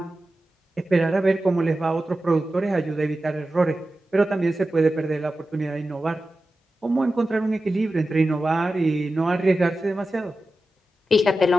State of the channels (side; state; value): both; normal; correlation 0.93